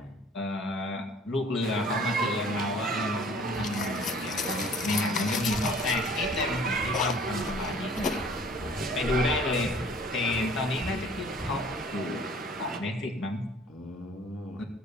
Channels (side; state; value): both; normal; correlation 0.52